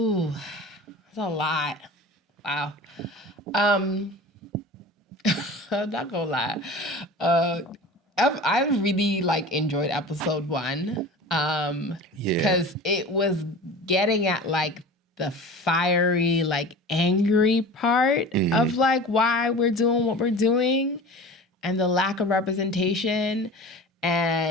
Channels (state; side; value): normal; both; correlation 0.37